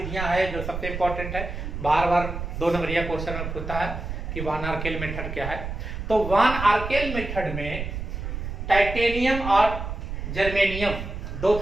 है जो सबसे इंपॉर्टेंट है। बार बार 2 नंबरिया क्वेश्चन में पूछता है कि वान आर्केल मेथड क्या है। तो वान आर्केल मेथड में टाइटेनियम और जर्मेनियम, 2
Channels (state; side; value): noise; right; rumble, 6 dB below the sound